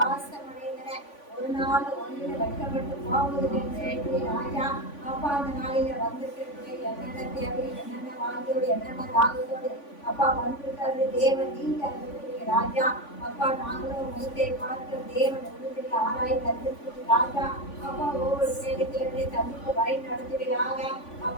அடைந்தன. ஒரு நாள் ஒன்றில் வைக்கப்பட்டு போவதில்லை ராஜா. அப்பா அந்த நாளில வந்திருக்கிற என்னென்ன தேவை, என்னென்ன வாழ்க்கையோடு, என்னென்ன தாகத்தோடு அப்பா வந்திருக்கிறது தேவன் நீங்க அறிவிக்கிறீங்க ராஜா. அப்பா நாங்களும் முகத்தை பார்க்கிற தேவன் உறுதியை ஆராய் தந்திருக்கிறது ராஜா. அப்பா ஒவ்வொரு சேவைகளை தந்திக்கு வழி நடத்துவீராக.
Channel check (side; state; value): right; late; 3.5 ms